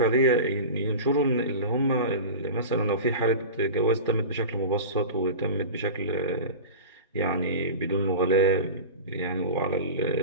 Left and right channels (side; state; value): both; inverted; correlation -0.30